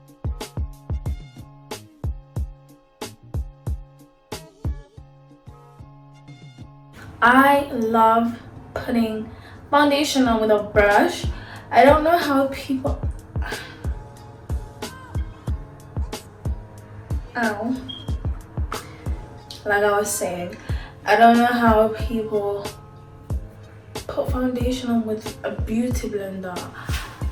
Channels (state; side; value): identical; both; correlation 1.00